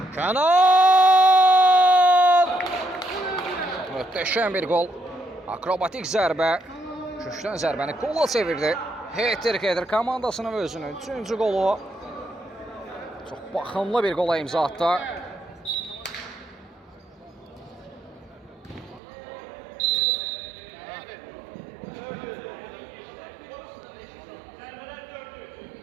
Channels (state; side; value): drops out; left; at 19.0 s